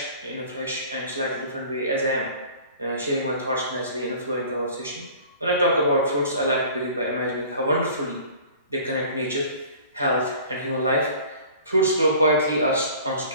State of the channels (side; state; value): both; inverted; correlation -0.45